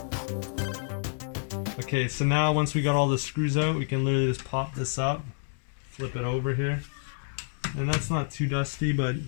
Okay, so now once we got all the screws out, we can literally just pop this up, flip it over here. And that's not too dusty, but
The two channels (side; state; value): right; silent; 59 dB below the other